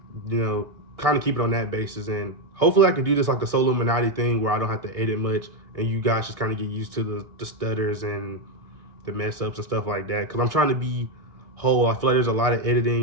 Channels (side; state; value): left; late; 1.6 ms